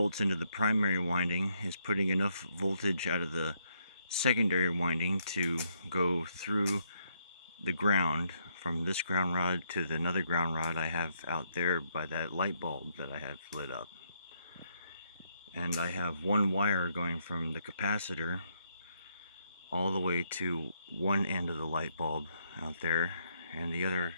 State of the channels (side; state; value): both; inverted; correlation -0.75